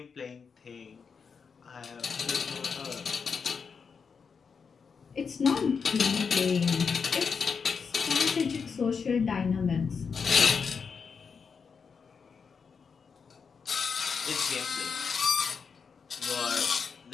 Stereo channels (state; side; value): quieter; right; 5.8 dB